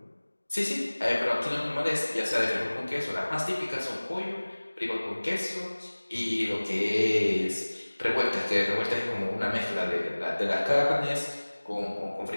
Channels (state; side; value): inverted; both; correlation -1.00